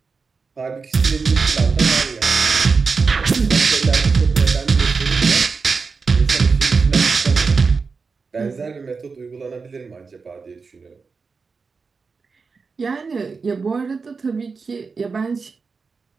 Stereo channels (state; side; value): quieter; left; 4.8 dB